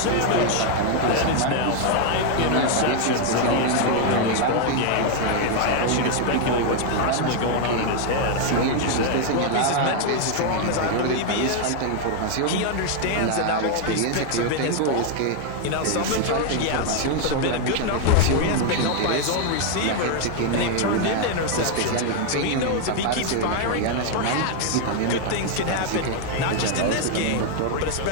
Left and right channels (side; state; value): both; different; correlation 0.00